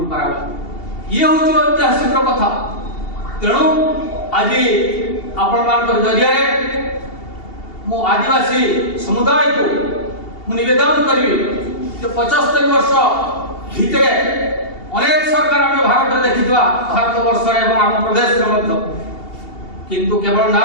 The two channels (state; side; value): late; right; 2.8 ms